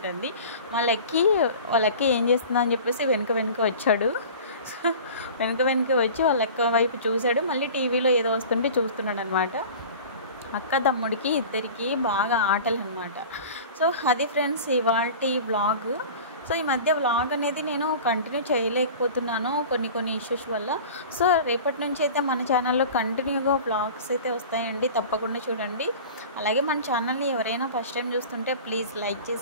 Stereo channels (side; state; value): both; inverted; correlation -0.39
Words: వాళ్ళకి ఏం చేస్తుందా అని చెప్పేసి వెనుక వచ్చాడు. వెనుక వచ్చి వాళ్ళ అక్క వైపు చూశాడు, మళ్ళీ టీవీలో ఏదో వస్తుంటే చూస్తున్నాడు అనమాట. అక్క తమ్ముడికి ఇద్దరికి బాగా ఆటలు అనమాట. సో అది ఫ్రెండ్స్ ఇవాల్టి వ్లాగ్. సో ఈ మధ్య వ్లాగ్ అనేది నేను కంటిన్యూ చేయలేకపోతున్నాను కొన్ని ఇష్యూస్ వల్ల. సో రేపటి నుంచి అయితే మన ఛానల్లో కంటిన్యూగా వ్లాగ్స్ అయితే వస్తాయండి, తప్పకుండా చూడండి. అలాగే మన ఛానల్ని ఎవరైనా ఫస్ట్ టైం చూస్తుంటే ప్లీజ్ లైక్